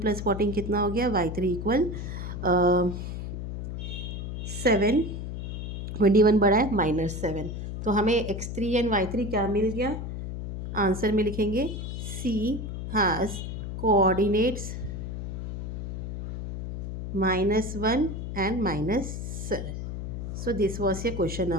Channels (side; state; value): left; noise; hum, 6 dB below the sound